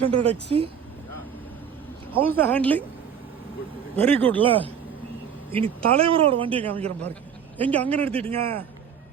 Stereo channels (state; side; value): quieter; left; 7.8 dB